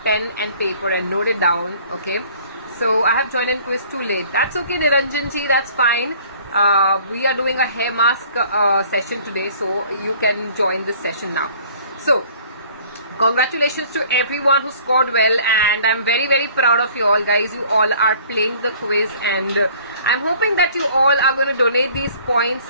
pen and paper and note it down, okay? So I have joined in quiz too late. That's okay, Niranjan ji, that's fine. We are doing a hair mask session today, so you can join this session now. So congratulations to everyone who scored well, and I'm very proud of you all, guys. You all are playing the quiz, and I'm hoping that you all are going to donate these points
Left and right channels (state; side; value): inverted; both; correlation -0.53